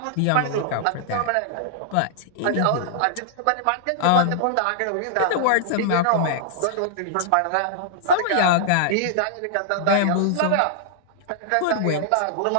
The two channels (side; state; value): both; different; correlation -0.01